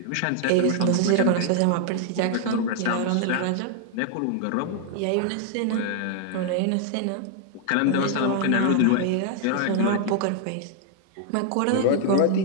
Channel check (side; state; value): both; different; correlation 0.00